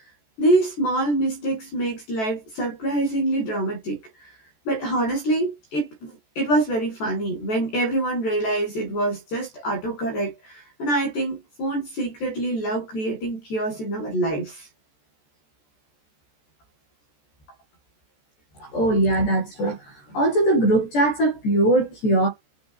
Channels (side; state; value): right; late; 14 ms